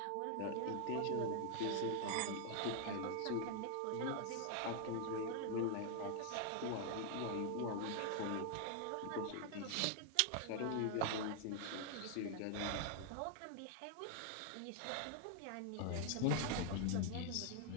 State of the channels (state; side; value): different; both; correlation 0.00